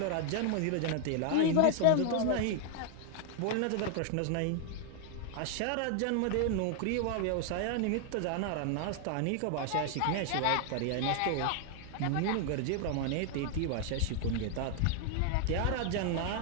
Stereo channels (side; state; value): both; different; correlation 0.00